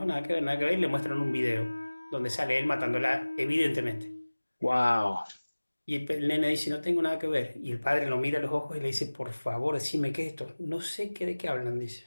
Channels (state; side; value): inverted; both; correlation -1.00